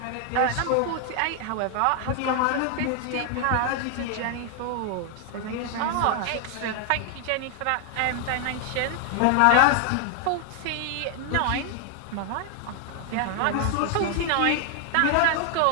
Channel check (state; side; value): different; both; correlation 0.00